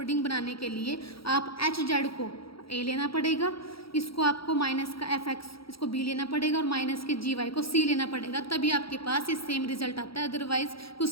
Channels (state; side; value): late; right; 0.75 ms